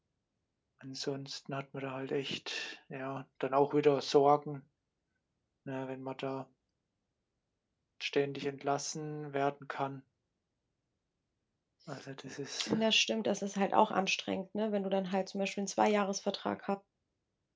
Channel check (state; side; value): identical; both; correlation 1.00